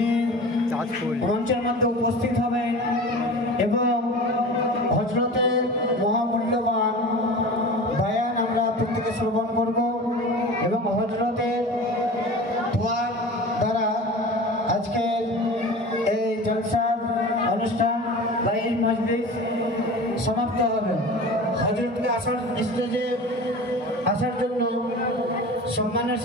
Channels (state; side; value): normal; both; correlation 0.35